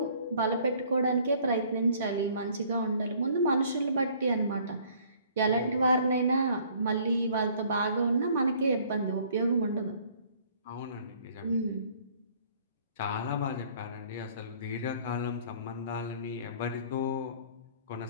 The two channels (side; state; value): both; inverted; correlation -0.57